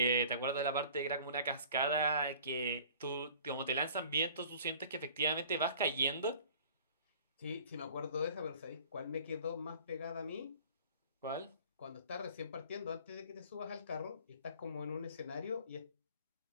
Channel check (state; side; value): inverted; both; correlation -0.48